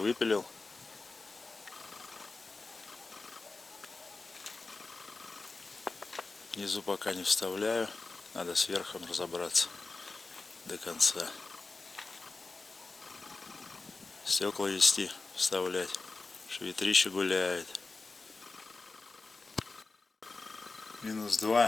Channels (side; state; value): right; quieter; 3.8 dB